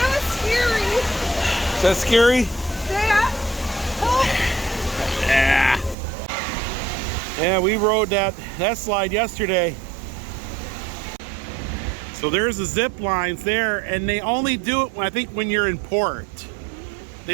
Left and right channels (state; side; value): drops out; left; at 6.0 s